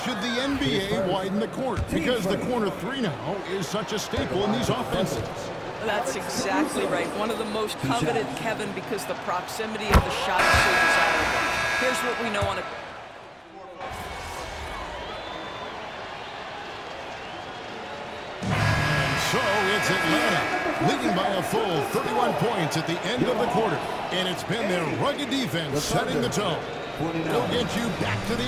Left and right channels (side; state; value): both; identical; correlation 1.00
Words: the NBA widen the court? Because the corner three now is such a staple in these offenses. That's exactly right. One of the most coveted, Kevin, because the proximity of the shot is so desirable. Here's what we know on a... And so it's Atlanta, leading by a full 31 points at the end of the quarter. And it's been their rugged defense setting the tone. We'll get you back to